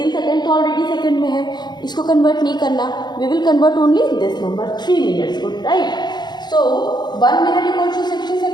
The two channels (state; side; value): late; right; 0.21 ms